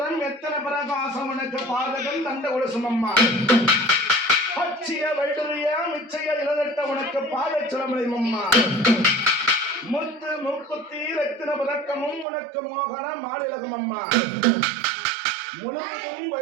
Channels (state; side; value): drops out; left; at 12.2 s